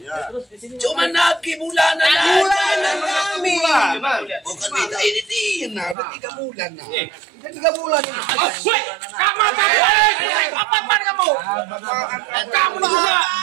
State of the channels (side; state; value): left; drops out; at 6.0 s